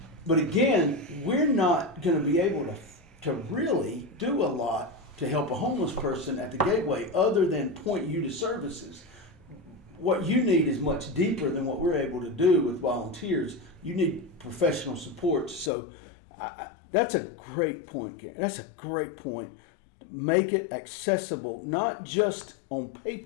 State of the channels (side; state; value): right; drops out; at 15.7 s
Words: But again, we're not going to be able to really do a lot to help a homeless person at the Gateway other than point you to services. What you need is much deeper than what we're able to do with volunteers. You need professional support. So that's a great point, Karen. That's a great point. Make it accessible, not just on